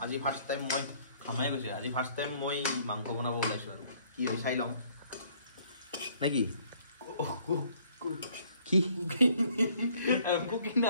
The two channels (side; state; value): both; inverted; correlation -0.61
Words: আজি ফাৰ্ষ্ট টাইম মই খামাই গৈছে আজি ফাৰ্ষ্ট টাইম মই মাংস বনাব ওলাইছোঁ আৰু কি হয় চাই লওঁ নে কি কি কুকিং